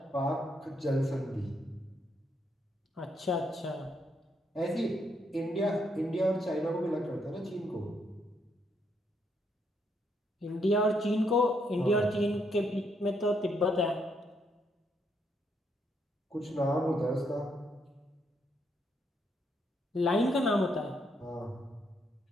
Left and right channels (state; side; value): normal; both; correlation 0.75